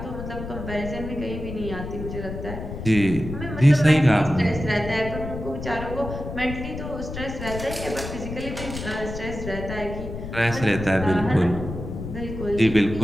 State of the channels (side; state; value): left; noise; rumble, 8 dB below the sound